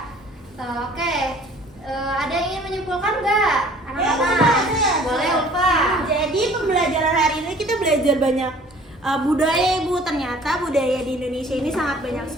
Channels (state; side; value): normal; both; correlation 0.52